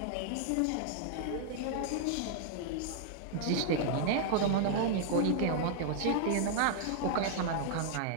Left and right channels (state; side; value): different; both; correlation 0.00